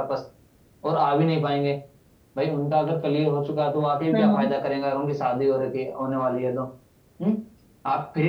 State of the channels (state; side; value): identical; both; correlation 1.00